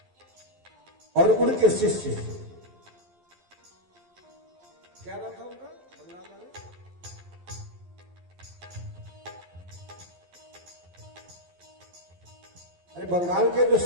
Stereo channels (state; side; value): late; left; 12 ms